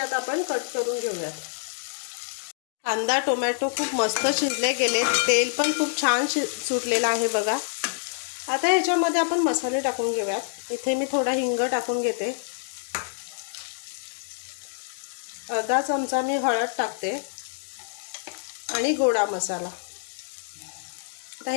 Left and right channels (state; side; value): silent; right; digital silence